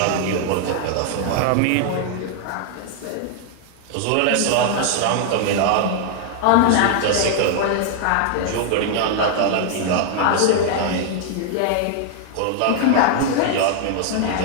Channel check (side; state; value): both; different; correlation 0.00